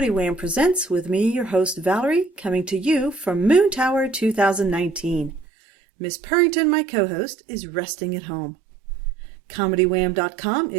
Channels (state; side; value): drops out; left; at 5.5 s